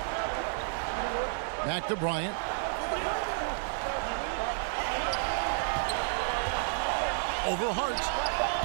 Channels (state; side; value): silent; left; digital silence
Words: Back to Bryant. Over Hart.